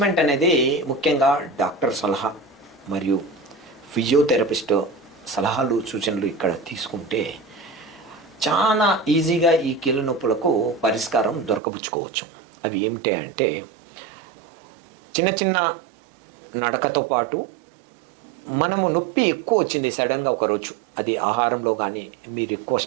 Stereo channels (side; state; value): left; drops out; at 11.6 s